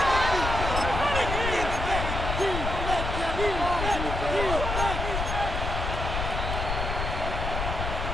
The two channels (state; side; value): noise; left; rumble, 3 dB below the sound